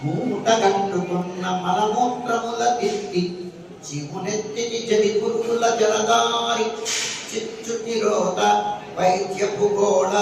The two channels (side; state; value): both; identical; correlation 1.00